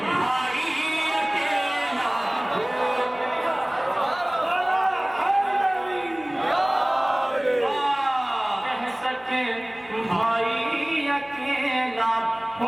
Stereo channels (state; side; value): noise; right; hum, 29 dB below the sound